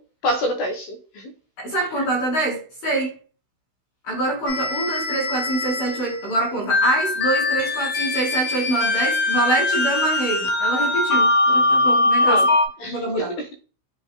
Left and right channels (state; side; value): late; right; 16 ms